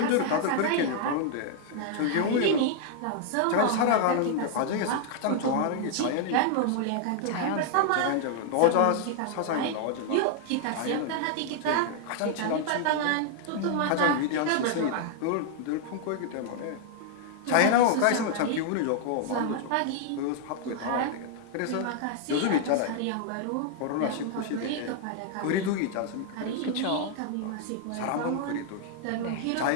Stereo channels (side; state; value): both; different; correlation 0.00